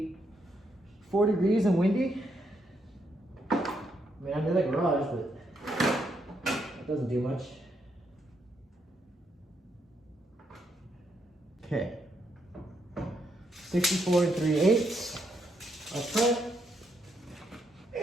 degrees and windy. I mean, I'm in the garage, but it doesn't do much. Okay. 64 3/8 up front.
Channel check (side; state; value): both; normal; correlation 0.77